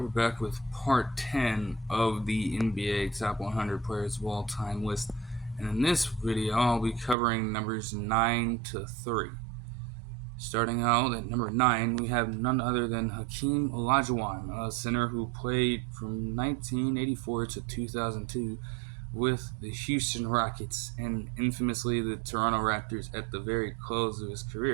back with part 10 of the NBA Top 100 Players of All Time list. And in this video, I'll be covering numbers 9 to 3. Starting out at number 9, we have none other than Hakeem Olajuwon, a center who played from 1984 to 2002 with the Houston Rockets and infamously the Toronto Raptors at the very close of his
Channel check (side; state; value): left; drops out; at 7.2 s